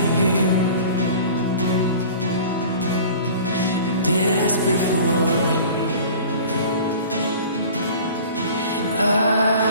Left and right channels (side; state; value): both; inverted; correlation -0.43